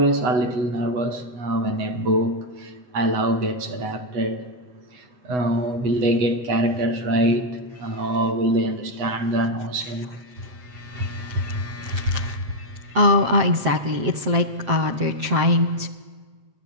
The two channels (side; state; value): left; late; 7.7 ms